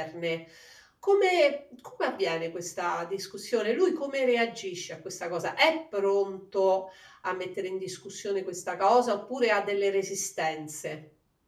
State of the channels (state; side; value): identical; both; correlation 1.00